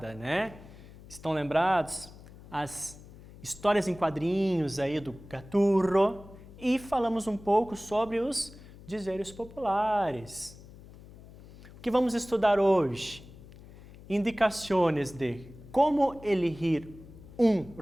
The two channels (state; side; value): noise; left; hum, 19 dB below the sound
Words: né? Estão lembrados? As histórias em quadrinhos aí do Gaturro e falamos um pouco sobre os dizeres populares. O que vamos estudar hoje? Indicações de como elegir um